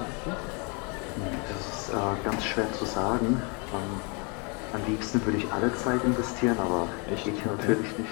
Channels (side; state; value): right; quieter; 33.4 dB